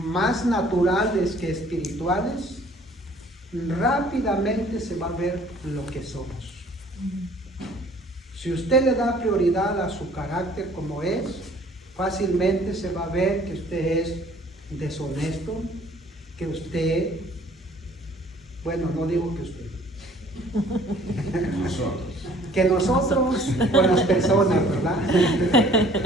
naturales que espirituales, rápidamente se va a ver lo que somos. Si usted le da prioridad a su carácter como es, fácilmente se va a ver que usted es deshonesto, que usted, bueno, no digo que usted, que nosotros con las personas, ¿verdad?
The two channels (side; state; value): both; normal; correlation 0.55